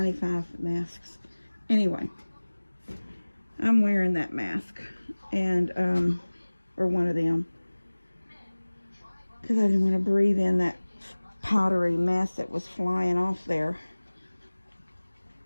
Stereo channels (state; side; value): inverted; both; correlation -1.00